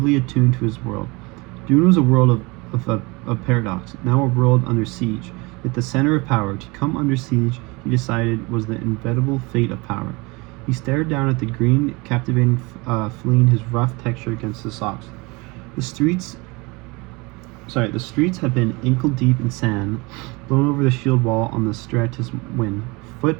attuned to his world. Dune was a world of paradox, now a world under siege. At the center of power, to come under siege, he decided, was the inevitable fate of power. He stared down at the green, captivating fleeing his rough texture against his socks. The streets had been ankle-deep in sand, blown over the shield wall on the stratus wind. Foot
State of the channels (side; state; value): left; quieter; 25.9 dB